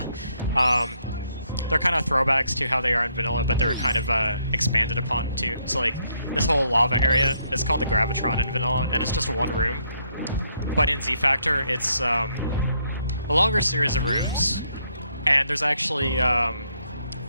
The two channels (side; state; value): both; inverted; correlation -0.73